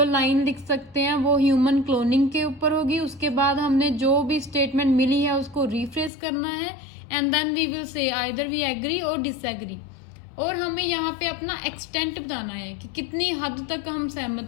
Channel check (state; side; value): drops out; right; at 6.1 s